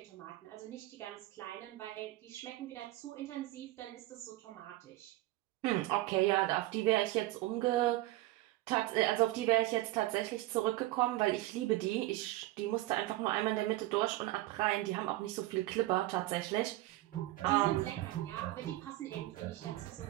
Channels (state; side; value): quieter; left; 17.4 dB